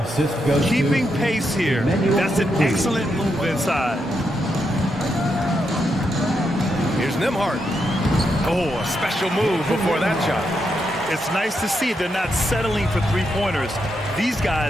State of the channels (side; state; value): both; normal; correlation 0.82